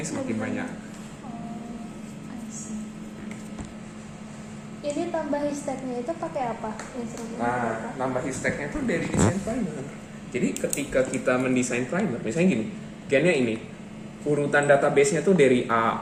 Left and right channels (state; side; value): identical; both; correlation 1.00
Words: semakin banyak. Ini tambah histeknya itu pakai apa? Nah, nambah histeknya itu dari desain primer. Jadi ketika kita mendesain primer, misalnya gini, gennya ini, urutan database-nya tuh dari